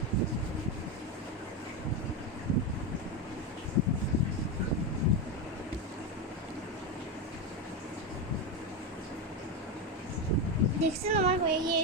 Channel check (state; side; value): normal; both; correlation 0.11